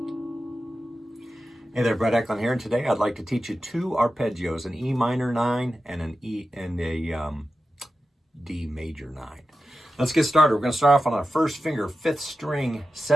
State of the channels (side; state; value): both; normal; correlation 0.92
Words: there, Brett Eklund here, and today I'd like to teach you two arpeggios, an E minor 9 and an E and a D major 9. Let's get started. We're going to start off on our first finger, 5th string,